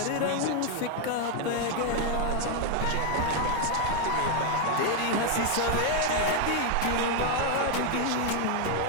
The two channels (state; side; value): different; both; correlation 0.01